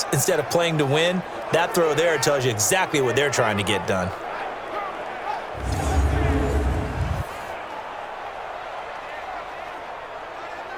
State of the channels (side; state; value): both; identical; correlation 1.00